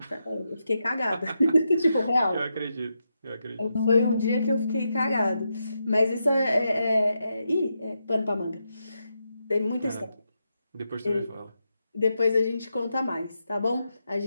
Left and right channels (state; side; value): inverted; both; correlation -0.85